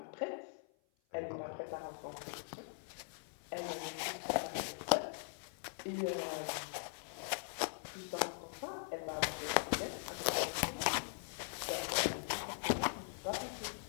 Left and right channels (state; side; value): silent; right; 50 dB below the other